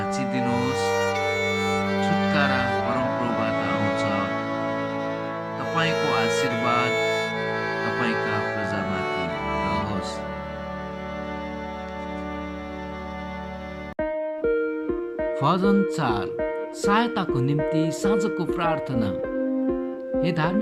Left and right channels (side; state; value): both; identical; correlation 1.00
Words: छुटकारा परमप्रभुबाट आउँछ। तपाईँको आशीर्वाद तपाईँका प्रजामाथि रहोस्। भजन 4 सहायताको निम्ति साँझको प्रार्थना। हे